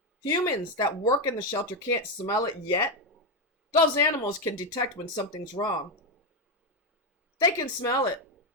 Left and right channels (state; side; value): normal; both; correlation 0.08